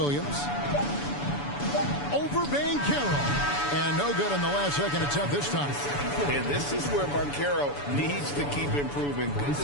Over Banchero. And no good on the last second attempt this time. And this is where Banchero needs to keep improving. Good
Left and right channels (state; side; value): late; right; 7.0 ms